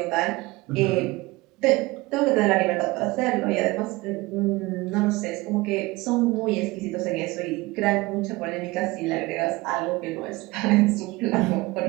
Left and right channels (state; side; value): quieter; left; 21.6 dB